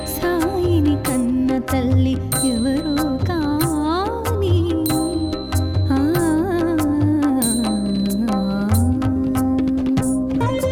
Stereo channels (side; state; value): both; identical; correlation 1.00